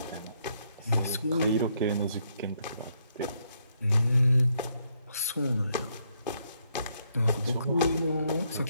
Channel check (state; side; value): inverted; both; correlation -0.75